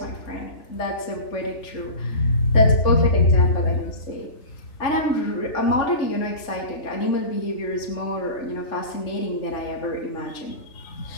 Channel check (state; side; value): late; right; 3.6 ms